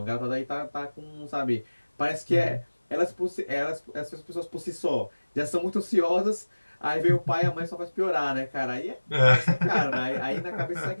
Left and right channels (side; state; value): both; inverted; correlation -1.00